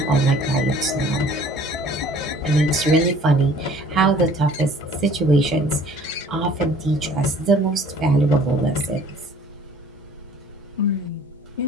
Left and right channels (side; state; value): both; normal; correlation 0.53